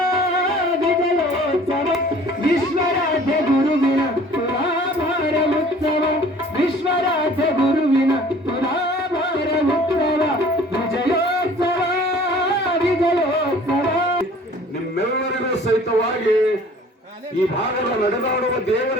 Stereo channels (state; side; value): normal; both; correlation 0.50